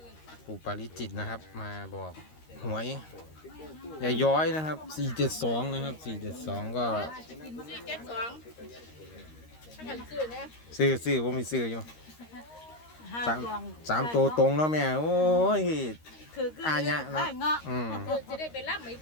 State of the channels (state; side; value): late; right; 13 ms